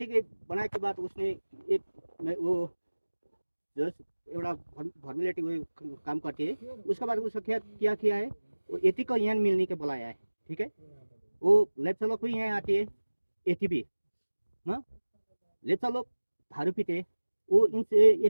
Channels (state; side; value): inverted; both; correlation -1.00